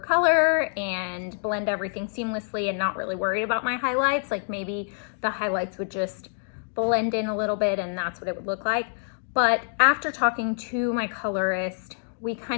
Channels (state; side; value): silent; right; digital silence